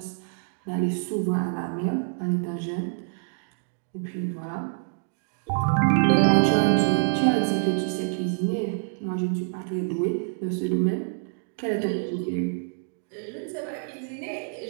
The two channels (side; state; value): left; silent; digital silence